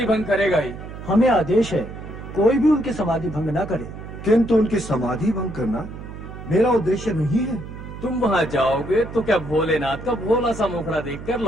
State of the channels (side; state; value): right; noise; hum, 12 dB below the sound